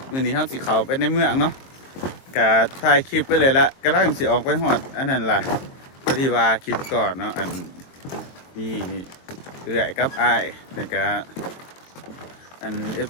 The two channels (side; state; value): right; late; 22 ms